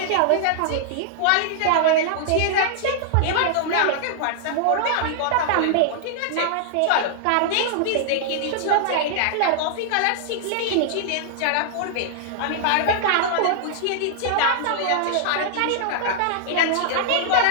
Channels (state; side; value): different; both; correlation -0.01